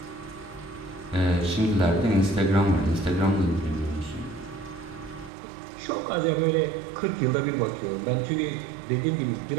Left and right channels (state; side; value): drops out; left; at 5.3 s